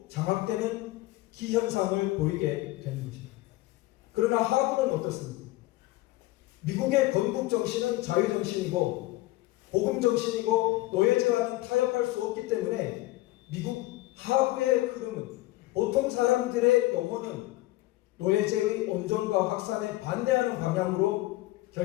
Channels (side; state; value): right; quieter; 18.4 dB